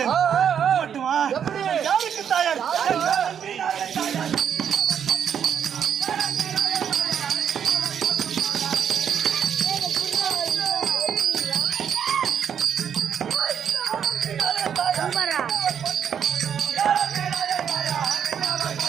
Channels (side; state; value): left; quieter; 8.3 dB